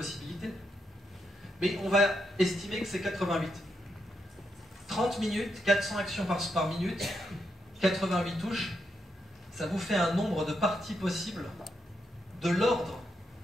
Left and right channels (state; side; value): normal; both; correlation 0.81